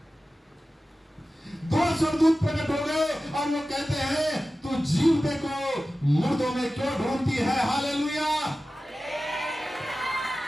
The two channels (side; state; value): both; normal; correlation 0.95